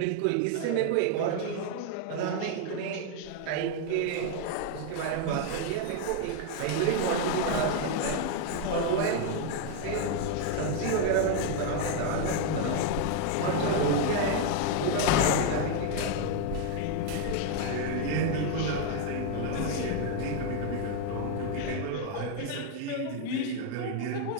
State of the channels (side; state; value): both; different; correlation 0.01